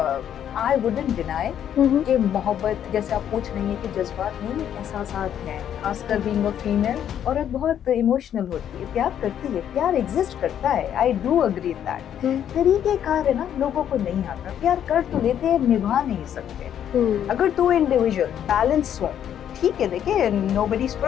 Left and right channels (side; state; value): right; quieter; 9.8 dB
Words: आई वुडंट डिनाई कि मोहब्बत, जैसे आप पूछ रही हैं कि जज्बात नहीं, एहसासात हैं। खासकर बीइंग अ फीमेल, औरत बहुत इमोशनल होती है, प्यार करती है, प्यार एग्जिस्ट करता है। I do agree that. तरीकेकार है ना, लोगों को नहीं आता। प्यार कर तो लेते हैं, निभा नहीं सकते। अगर दो इंडिविजुअल बैलेंस हो, ठीक है, देखिए नोबडी इज